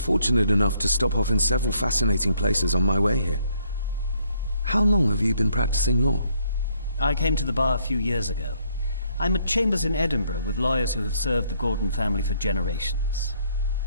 enough to stop off in several fascinating places on my way here. How long have you been practicing law? I came to the bar a few years ago. I'm at chambers in Edinburgh with lawyers who have served the Gordon family for generations.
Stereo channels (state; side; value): inverted; both; correlation -0.69